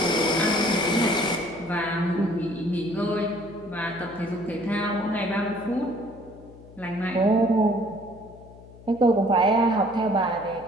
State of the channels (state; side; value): noise; left; hum, 20 dB below the sound